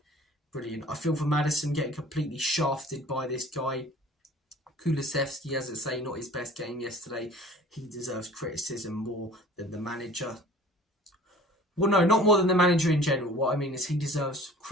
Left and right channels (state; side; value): normal; both; correlation 0.46